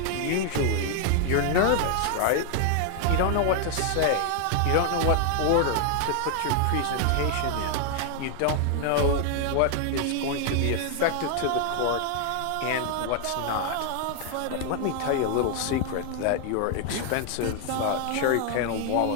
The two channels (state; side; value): different; both; correlation 0.00